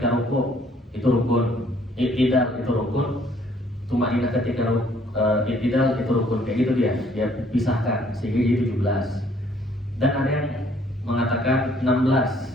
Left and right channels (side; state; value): both; normal; correlation 0.62